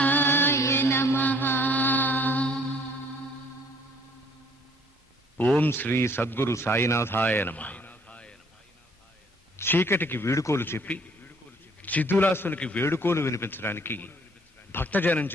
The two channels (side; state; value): both; normal; correlation 0.59